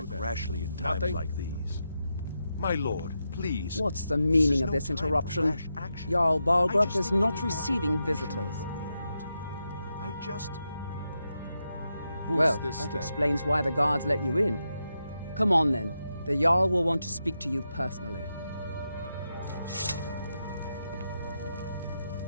rashly in times like these. My lord, please. What's the meaning of this interruption? Jarl Balgrup is not receiving visitors. I just... Well, that explains why the guards let you in. Come on then. The Jarl will want to speak to you personally.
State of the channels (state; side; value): inverted; both; correlation -0.86